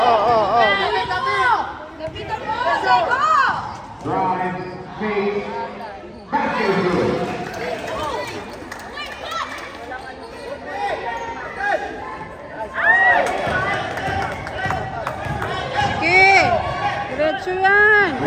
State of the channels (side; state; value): both; identical; correlation 1.00